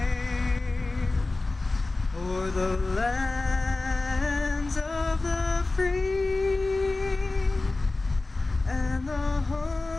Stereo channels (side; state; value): right; quieter; 3.3 dB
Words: o'er the lands of the free and the